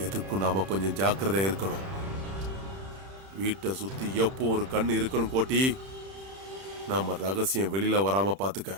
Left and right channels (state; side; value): late; left; 31 ms